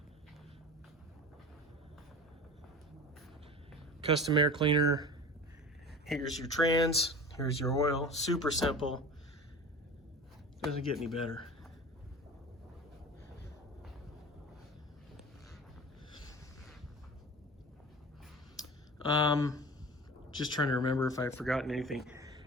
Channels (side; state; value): both; normal; correlation 0.35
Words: Custom air cleaner. Here's your trans. Here's your oil. Super simple. Doesn't get any better. Just trying to remember if I've forgotten anything.